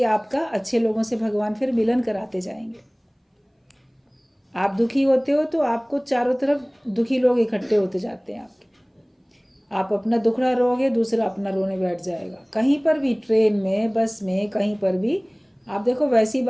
आपका अच्छे लोगों से भगवान फिर मिलन कराते जाएंगे। आप दुखी होते हो तो आपको चारों तरफ दुखी लोग इकट्ठे होते जाते हैं आपके। आप अपना दुखड़ा रोओगे, दूसरा अपना रोने बैठ जाएगा। कहीं पर भी, ट्रेन में, बस में, कहीं पर भी आप देखो वैसी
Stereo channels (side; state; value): both; identical; correlation 1.00